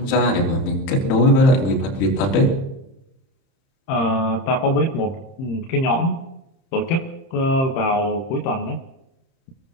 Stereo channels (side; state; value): right; late; 31 ms